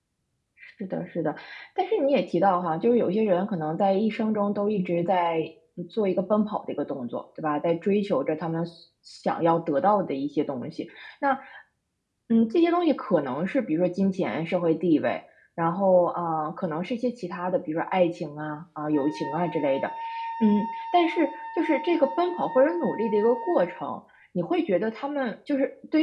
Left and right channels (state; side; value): identical; both; correlation 1.00